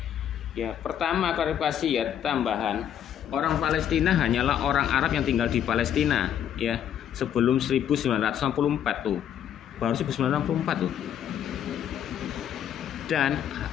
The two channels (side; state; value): right; quieter; 9.7 dB